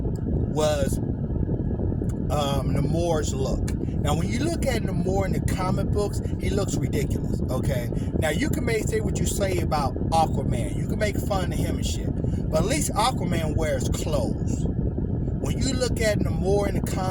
Namor's look. Now, when you look at Namor in the comic books, he looks ridiculous, okay? Now, you can say what you say about Aquaman. You can make fun of him and shit. But at least Aquaman wears clothes. When you look at Namor in the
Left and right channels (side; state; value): both; identical; correlation 1.00